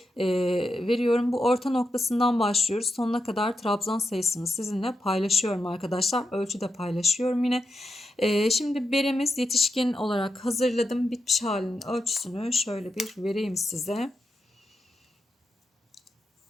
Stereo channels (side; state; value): both; normal; correlation 0.86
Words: veriyorum. Bu orta noktasından başlıyoruz. Sonuna kadar trabzan sayısını sizinle paylaşıyorum arkadaşlar. Ölçü de paylaşıyorum yine. Şimdi beremiz yetişkin olarak hazırladım. Bitmiş halinin ölçüsünü şöyle bir vereyim size.